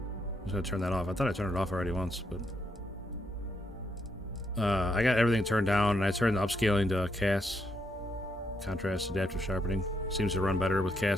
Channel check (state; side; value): normal; both; correlation 0.77